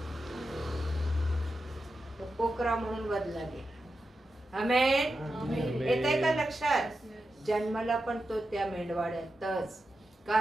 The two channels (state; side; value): normal; both; correlation 0.90